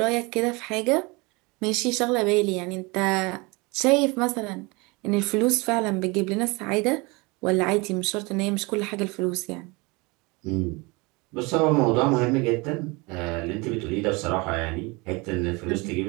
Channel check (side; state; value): left; quieter; 26.4 dB